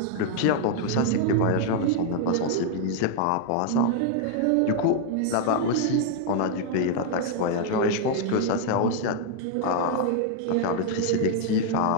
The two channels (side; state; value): both; different; correlation 0.00